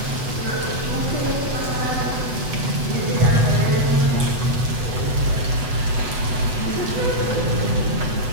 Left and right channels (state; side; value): late; left; 8.0 ms